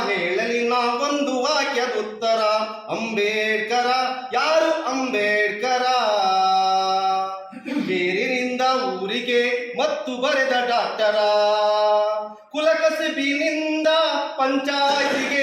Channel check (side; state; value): both; identical; correlation 1.00